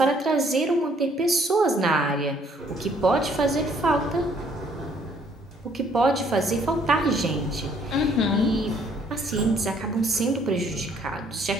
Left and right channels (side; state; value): both; normal; correlation 0.63